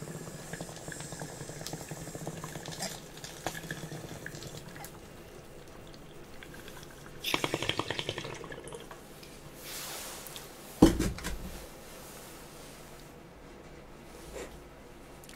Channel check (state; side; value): identical; both; correlation 1.00